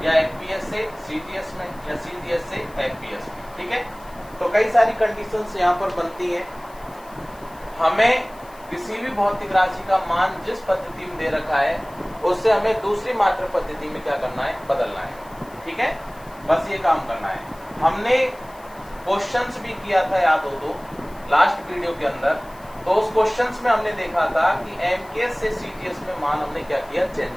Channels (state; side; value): noise; left; hiss, 25 dB below the sound